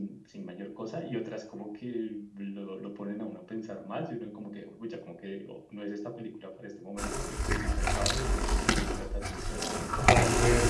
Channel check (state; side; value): identical; both; correlation 1.00